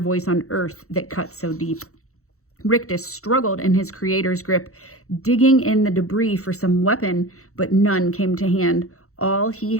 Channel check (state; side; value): late; right; 0.64 ms